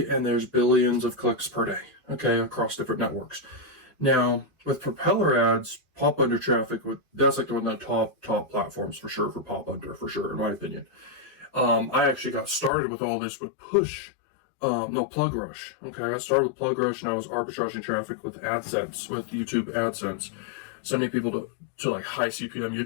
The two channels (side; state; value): right; drops out; at 12.7 s